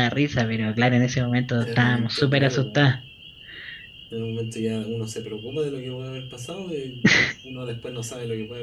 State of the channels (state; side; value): identical; both; correlation 1.00